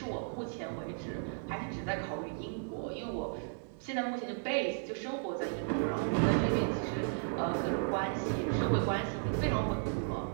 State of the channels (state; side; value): silent; left; 55 dB below the other